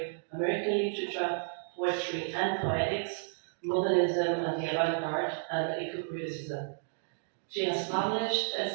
American literature, poetry and poetics, modernism and the avant-garde, and eco-criticism. She has published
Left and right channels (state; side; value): silent; left; digital silence